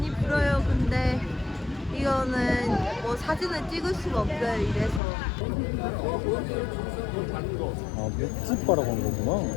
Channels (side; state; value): right; drops out; at 5.0 s